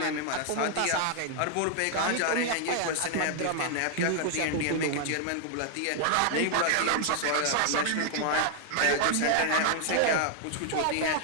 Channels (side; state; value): both; different; correlation 0.00